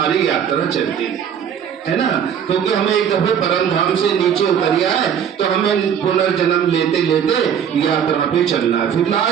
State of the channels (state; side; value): quieter; left; 8.4 dB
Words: यात्रा चलती है ना। क्योंकि हमें एक दफे परम धाम से नीचे उतरिया है, तो हमें पुनर्जन्म लेते लेते यात्रा पे चलना है। फिर